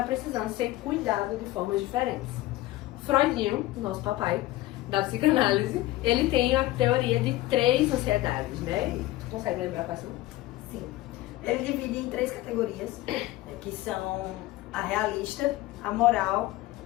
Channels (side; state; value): right; quieter; 17.0 dB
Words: precisando ser cuidado de formas diferentes. Freudinho, nosso papai da psicanálise, ele tem a teoria de 3 ansiedades, né? Tu consegue lembrar quais são? Sim. Ele divide em 3 categorias, que são a realista, a moral